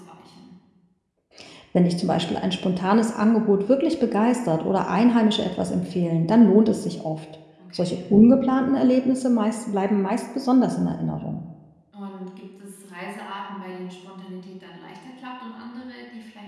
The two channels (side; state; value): both; identical; correlation 1.00